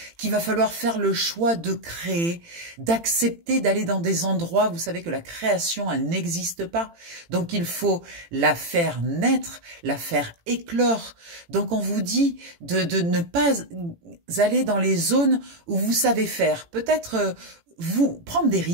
qu'il va falloir faire le choix de créer, d'accepter d'aller dans des endroits. Vous savez que la création, elle n'existe pas. Donc il faut la faire naître, la faire éclore. Donc on vous dit de ne pas aller dans les zones où vous savez faire. Peut-être... vous prendre des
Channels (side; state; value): left; late; 18 ms